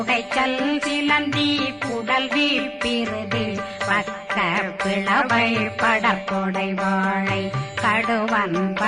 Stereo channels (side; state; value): both; identical; correlation 1.00